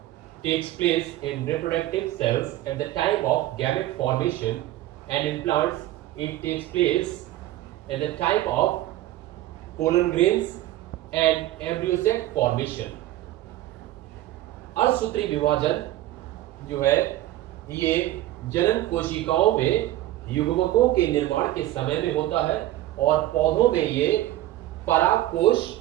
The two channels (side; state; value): left; quieter; 14.9 dB